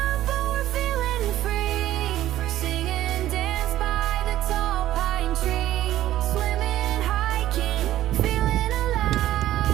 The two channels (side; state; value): left; quieter; 13.6 dB